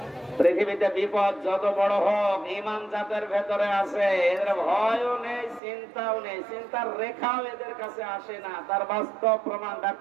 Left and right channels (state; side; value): drops out; left; at 5.6 s